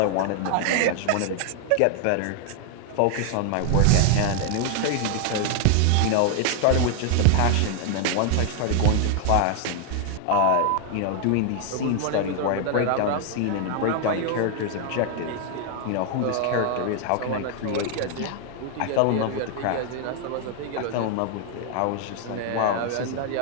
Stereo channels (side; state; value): both; different; correlation 0.00